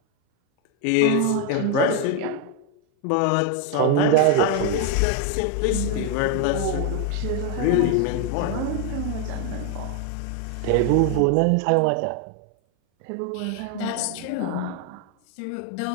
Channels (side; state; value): both; different; correlation 0.01